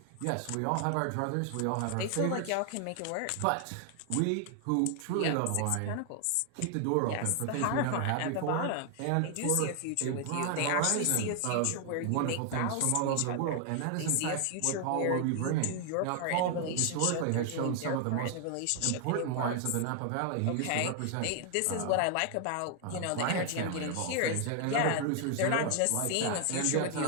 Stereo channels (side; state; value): both; different; correlation 0.00